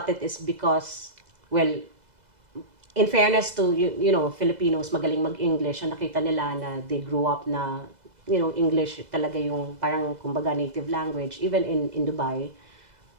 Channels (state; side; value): late; left; 2.0 ms